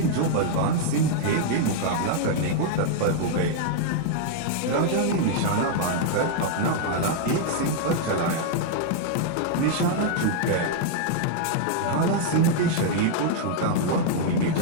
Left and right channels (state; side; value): different; both; correlation -0.01